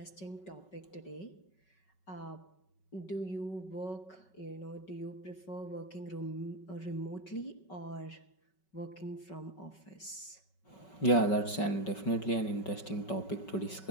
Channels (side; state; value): right; late; 5.3 ms